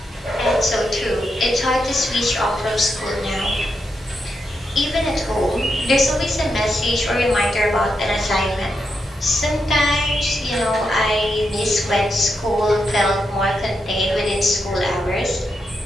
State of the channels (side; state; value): both; normal; correlation 0.84